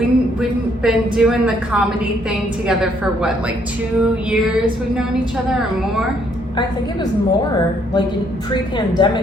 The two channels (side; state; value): both; normal; correlation 0.68